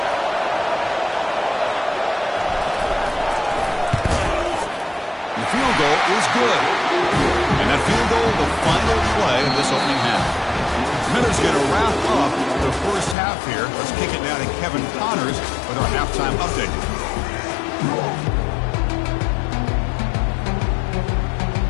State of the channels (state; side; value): drops out; right; at 13.2 s